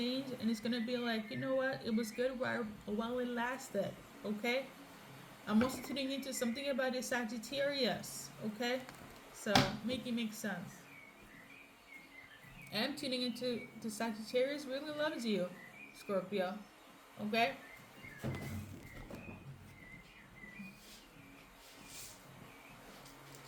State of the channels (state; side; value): identical; both; correlation 1.00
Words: and it's gonna be like, you know what? It was good while it lasted. Okay. I'm also tuning into something about the Sagittarius. Okay. So make it make sense. And I'm tuning into the Sagittarius really loves you, Scorpio. Okay.